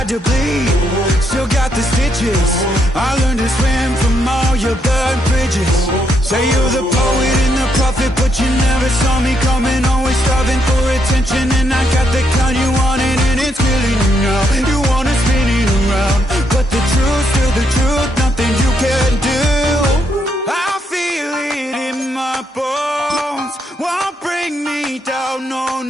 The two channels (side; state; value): both; normal; correlation 0.77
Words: Say you're the poet and the prophet, but you never saw me coming. Always starving for attention, and I got the kind you wanted, and it's killing you now. You wanna spin it around, but the truth's still the truth. Nothing you can do. I feel it in my bones. Won't bring me down, no,